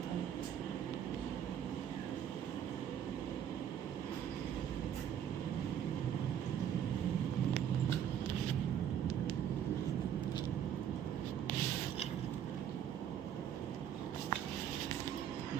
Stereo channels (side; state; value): left; quieter; 9.3 dB